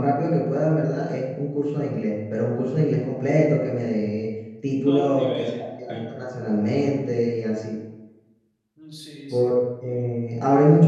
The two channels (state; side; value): identical; both; correlation 1.00